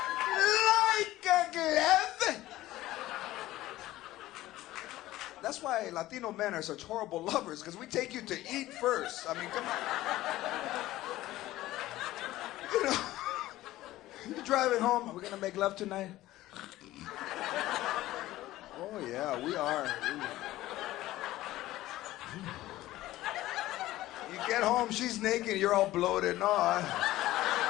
Like a glove. That's why Latino men are such horrible lovers, because we take you to eat first. I mean, come on. You know, you're driving home. Are we gonna make love tonight? Oh yeah, we are. You get home, she's naked, you're all bloated. No,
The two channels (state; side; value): quieter; right; 16.1 dB